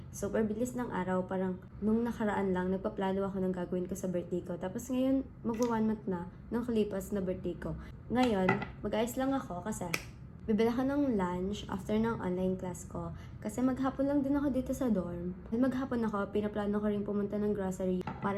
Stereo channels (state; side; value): identical; both; correlation 1.00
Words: Super bilis ng araw. Parang nung nakaraan lang, nagpaplano ako ng gagawin ko sa birthday ko. Tapos ngayon, magwa 1 month na nung kalipas na birthday ko. Ngayon, mag-ayos lang ako kasi bibili ako ng lunch after ng online class ko. Kasi maghapon lang din ako dito sa dorm. Maghapon ako, pinaplano ko rin pumunta ng grocery para